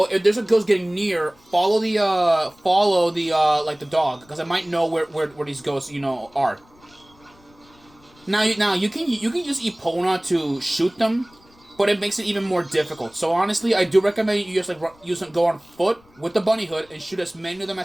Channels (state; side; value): noise; left; rumble, 29 dB below the sound